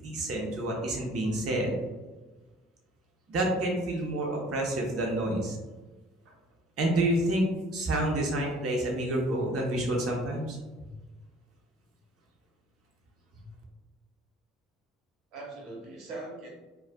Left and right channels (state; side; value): normal; both; correlation 0.51